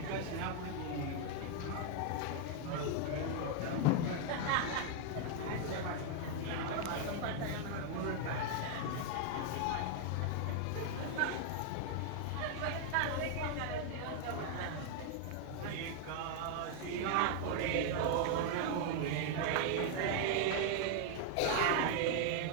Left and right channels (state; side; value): different; both; correlation 0.00